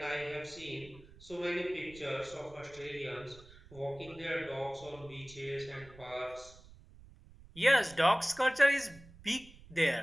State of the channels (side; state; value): right; noise; rumble, 21 dB below the sound